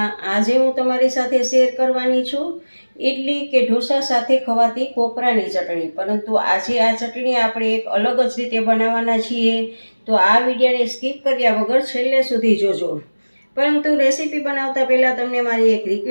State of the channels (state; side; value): inverted; both; correlation -1.00